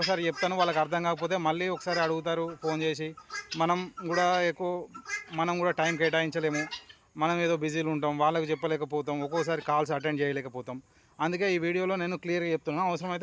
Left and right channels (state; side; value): identical; both; correlation 1.00